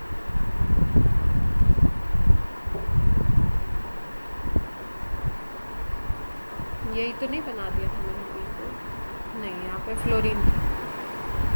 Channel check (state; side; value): inverted; both; correlation -1.00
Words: यही तो नहीं बना दिया था मैंने बिल्कुल? नहीं, यहाँ पे फ्लोरीन था।